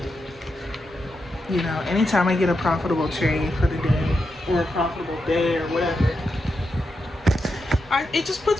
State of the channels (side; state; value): both; normal; correlation 0.86